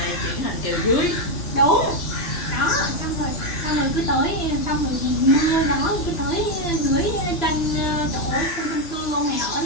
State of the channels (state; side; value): late; right; 2.9 ms